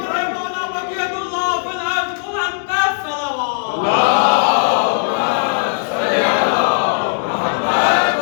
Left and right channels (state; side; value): silent; right; digital silence